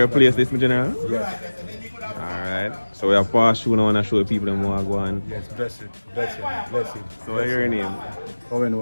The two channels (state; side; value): inverted; both; correlation -1.00